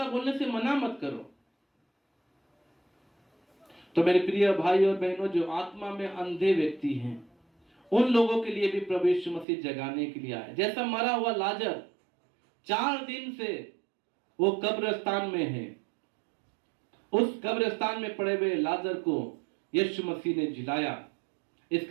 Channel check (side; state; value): left; drops out; at 9.5 s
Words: बोलने से मना मत करो। तो मेरे प्रिय भाई और बहनों, जो आत्मा में अंधे व्यक्ति हैं, उन लोगों के लिए भी प्रभु यीशु मसीह जगाने के लिए आए। जैसा मरा हुआ लाजर 4 दिन से वो कब्रिस्तान में है, उस कब्रिस्तान में पड़े हुए लाजर को यीशु मसीह ने जिलाया।